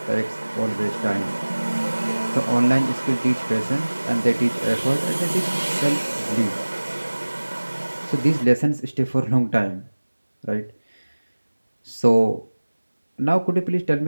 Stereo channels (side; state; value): both; inverted; correlation -1.00